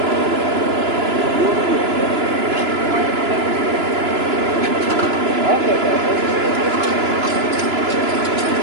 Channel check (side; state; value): left; late; 2.9 ms